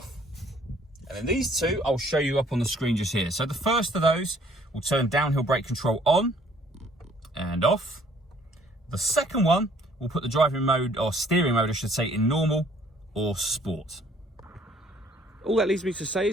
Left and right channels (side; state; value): both; normal; correlation 0.59